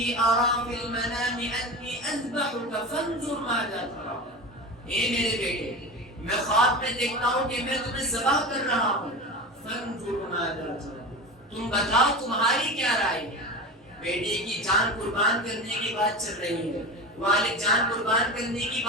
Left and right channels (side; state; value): both; normal; correlation 0.27